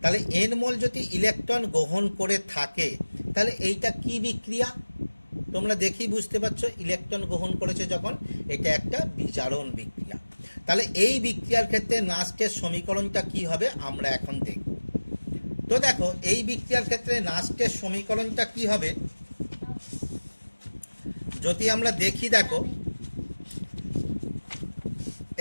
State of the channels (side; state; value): both; inverted; correlation -1.00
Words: তাহলে এন মোল যদি ইলেকট্রন গ্রহণ করে থাকে তাহলে এইটা কি বিক্রিয়া, তোমরা দেখি বুঝতে পারছো, ইলেকট্রন গ্রহণ করেছে যখন, এটা একটা বিজারণ বিক্রিয়া। তাহলে এই বিক্রিয়ার ক্ষেত্রে নাস্টের সমীকরণটা কি হবে আমরা এখন দেখব। তো দেখো এই বিক্রিয়ার ক্ষেত্রে নাস্টের সমীকরণটা কি হবে যদি আমরা দেখি, দেখো